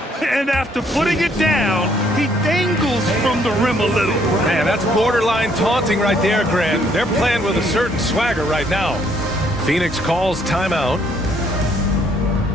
And after putting it down, he dangles from the rim a little. Man, that's borderline taunting right there, Grant. They're playing with a certain swagger right now. Phoenix calls timeout.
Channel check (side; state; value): both; normal; correlation 0.67